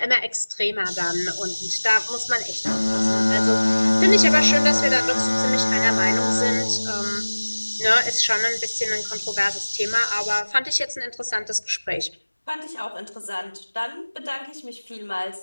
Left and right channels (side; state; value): both; inverted; correlation -1.00